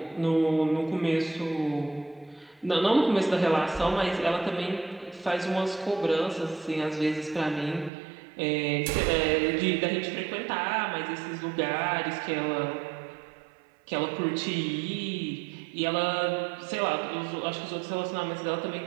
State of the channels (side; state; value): left; drops out; at 7.9 s